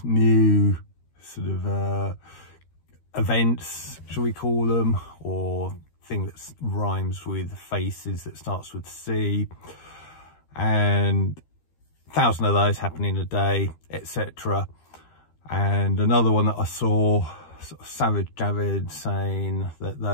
new sort of events, shall we call them, or thing that rhymes with faces that starts with C, and 1,000 of those happening a day, etc. And another one that I saw, sort of Savage Javid saying that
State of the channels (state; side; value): late; right; 13 ms